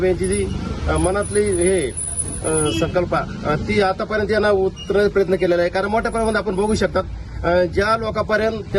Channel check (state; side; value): identical; both; correlation 1.00